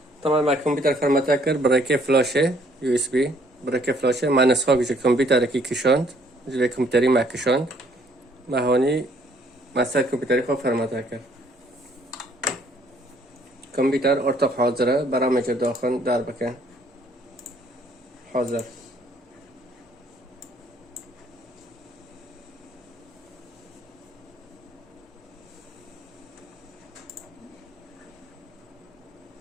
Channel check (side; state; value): both; normal; correlation 0.63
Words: طبعا ما كمبيوتر فرمته كر برای فلاشه یو اس بی برای فلاشه ما نسخه گوشه کمپیوتر کی کشاند جلوی کمپیوتری ما کشاند ما هونی مثلا کمپیوتری خوب فرمته کرد کمپیوتر ارتق حاضره برای مجر داخل در بکن حاضر